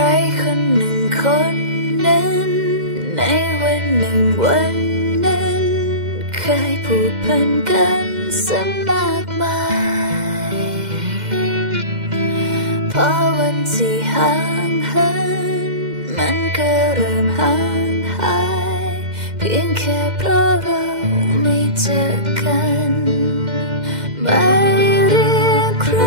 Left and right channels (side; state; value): left; late; 2.1 ms